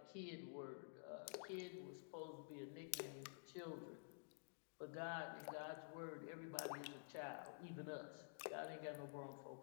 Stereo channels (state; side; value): silent; right; digital silence